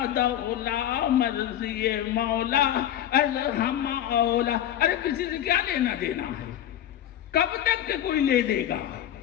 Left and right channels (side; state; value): right; quieter; 11.3 dB